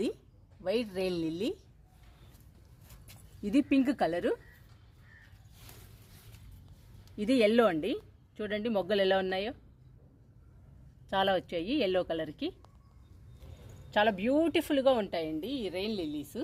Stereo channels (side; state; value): both; identical; correlation 1.00